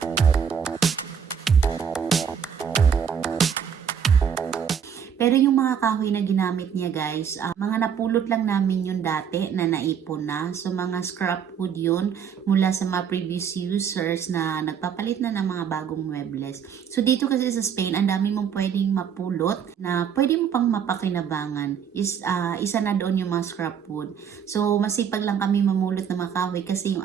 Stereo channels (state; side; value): quieter; left; 7.6 dB